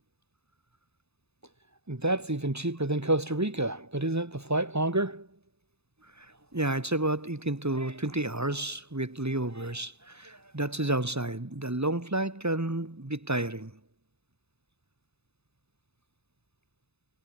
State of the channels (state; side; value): late; left; 0.79 ms